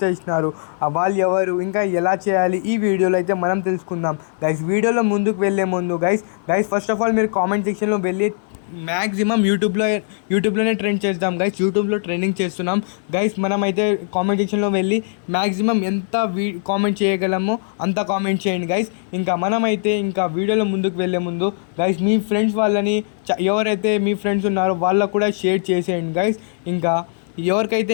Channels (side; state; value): right; silent; digital silence